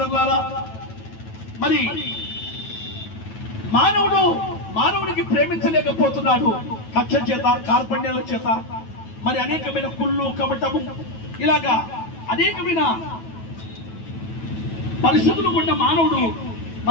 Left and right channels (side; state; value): right; late; 9.2 ms